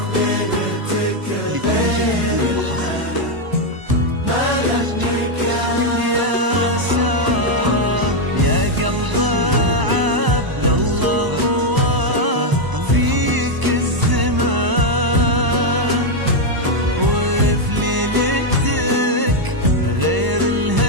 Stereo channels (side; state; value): left; late; 1.0 ms